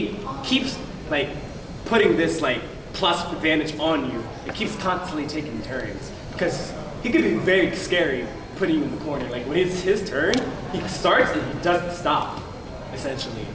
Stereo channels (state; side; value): identical; both; correlation 1.00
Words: keeps putting this plus advantage on you. It keeps constantly taking turns because he can be very scary putting you in the corner. When it's his turn, he starts and he doesn't stop. Essentially,